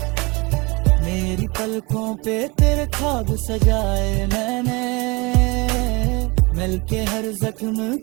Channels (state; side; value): quieter; left; 26.4 dB